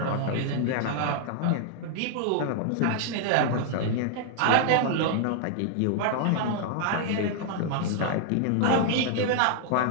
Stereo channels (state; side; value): different; both; correlation 0.00